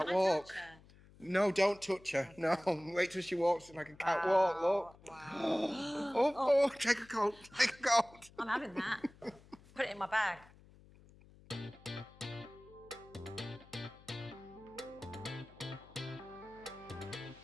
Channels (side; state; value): left; noise; hum, 24 dB below the sound